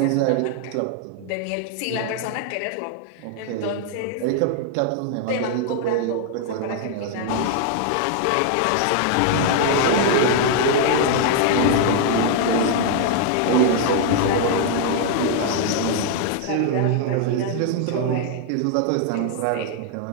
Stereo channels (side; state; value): both; different; correlation 0.00